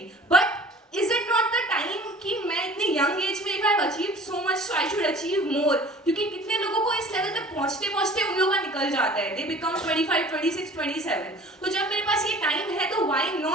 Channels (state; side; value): normal; both; correlation 0.46